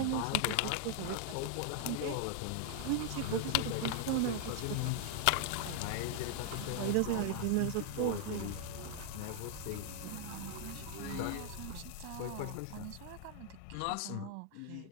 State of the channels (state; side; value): different; both; correlation 0.00